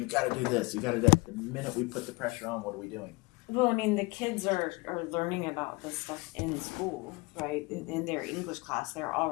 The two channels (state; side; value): quieter; right; 25.4 dB